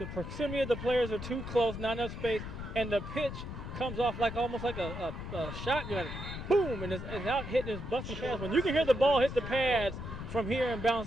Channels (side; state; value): left; noise; rumble, 8 dB below the sound